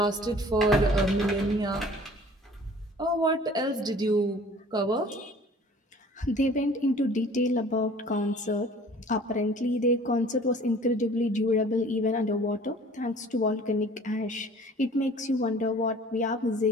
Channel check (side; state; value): both; normal; correlation 0.49